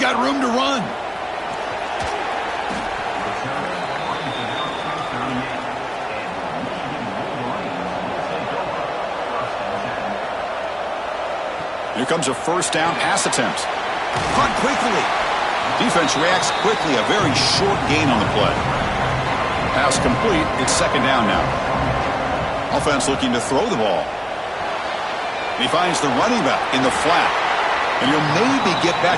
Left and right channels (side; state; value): both; identical; correlation 1.00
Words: room to run. Here comes a 1st down pass attempt. Caught quickly. Defense reacts quickly. A very short gain on the play. Pass complete. It's 2nd down now. Offense looking to throw the ball. He finds the running back in the flat. And he'll maybe get